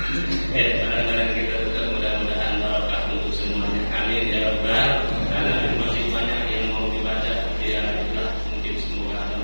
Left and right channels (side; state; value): both; inverted; correlation -1.00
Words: Ya, barang-barang kita tetap mudah-mudahan barokah untuk semuanya. Amin ya rabbal alamin. Masih banyak yang mau dibaca, ya itulah mungkin semoga ada